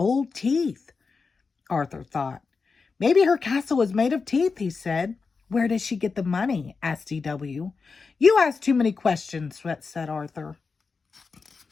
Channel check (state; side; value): quieter; right; 4.7 dB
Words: teeth? Arthur thought. Maybe her castle is made of teeth, he said. Where does she get the money? Asked DW. You ask too many questions, said Arthur.